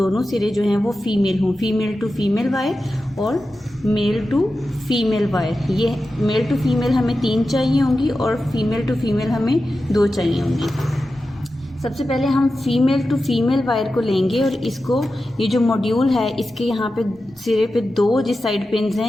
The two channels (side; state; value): both; normal; correlation 0.92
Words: सिरे जो हैं वो फीमेल हों, फीमेल टू फीमेल वायर और मेल टू फीमेल वायर। ये मेल टू फीमेल हमें 3 चाहिए होंगी और फीमेल टू फीमेल हमें 2 चाहिए होंगी। सबसे पहले हम फीमेल टू फीमेल वायर को लेंगे और इसको, ये जो मॉड्यूल है इसके यहाँ पे सिरे पे 2 जिस साइड पिन्स